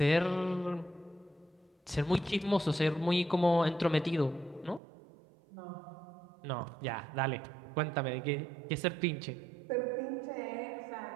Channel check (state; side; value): drops out; left; at 4.8 s